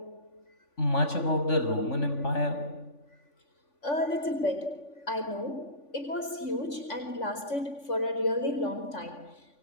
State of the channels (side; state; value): right; late; 3.5 ms